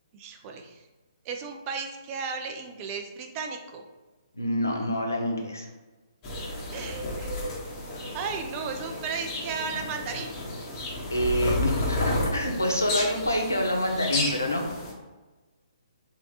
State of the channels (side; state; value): both; inverted; correlation -0.59